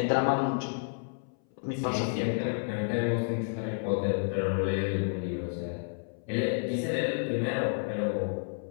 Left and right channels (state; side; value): silent; right; 57 dB below the other